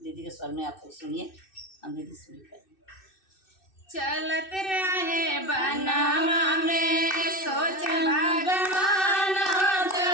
दीदी के स्वर में आपको सुनिए। हम दीदी सुनिए। चलत रहे बनवा में सोच भगवान हो,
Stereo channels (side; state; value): right; late; 2.6 ms